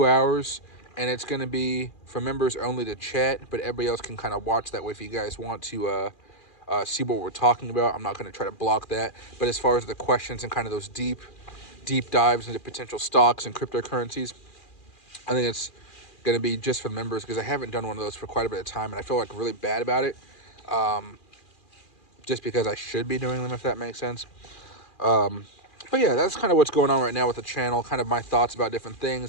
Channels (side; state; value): right; late; 2.4 ms